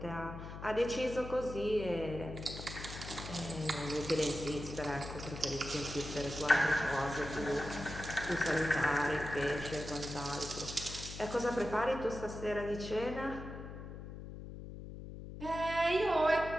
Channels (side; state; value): left; noise; hum, 10 dB below the sound